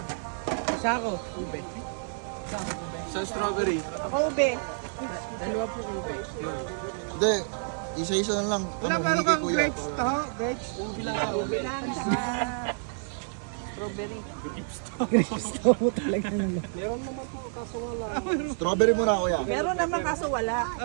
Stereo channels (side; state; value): left; silent; digital silence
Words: Isa ako. Ube. Sa strawberry. Ako ube. Dalawa po ube. Hindi. Isa-isa na lang. Wala Ano, meron hindi kay kang kuya. grapes to? Grapes? Ube lang ka. Ube lang. Strawberry. Grapes to mo talaga naman. Meron naman po, kaso wala. Strawberry muna kuya. Meron naman kaso wala.